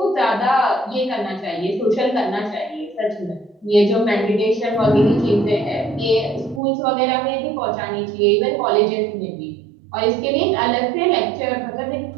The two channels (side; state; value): left; drops out; at 6.6 s